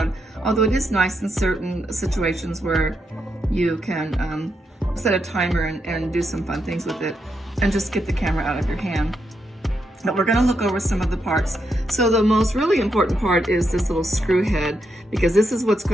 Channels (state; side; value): normal; both; correlation 0.82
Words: although it is nice in certain situations where you can set a timer and do some fun things with it and just get the camera out of your hand. But we're going to look over some of the parts. So the most really important part is this little screw head, because this is what's